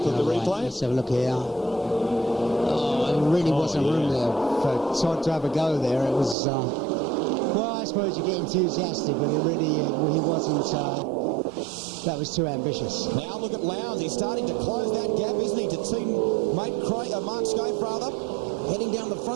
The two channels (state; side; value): drops out; left; at 6.4 s